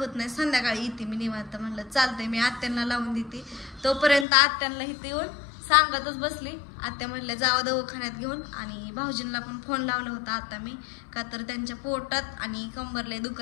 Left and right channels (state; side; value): drops out; right; at 4.2 s